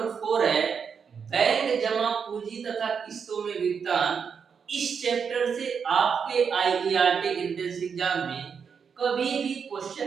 4 है, बैंक जमा पूंजी तथा किस्तों में भुगतान, इस चैप्टर से आपके आईईआरटी एंट्रेंस एग्जाम में कभी भी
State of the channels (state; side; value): quieter; left; 6.5 dB